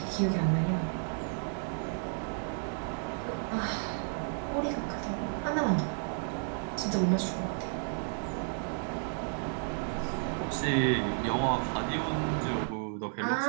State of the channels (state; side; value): silent; left; 56 dB below the other